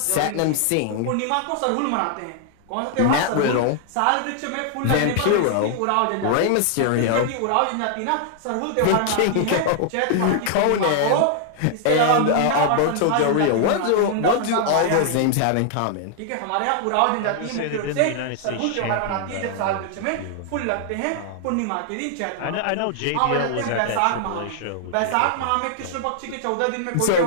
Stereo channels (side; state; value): both; different; correlation -0.01